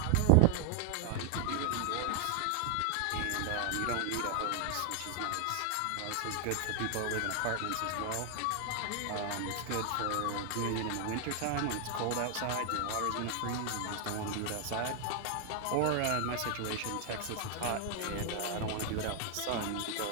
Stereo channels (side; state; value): both; different; correlation 0.00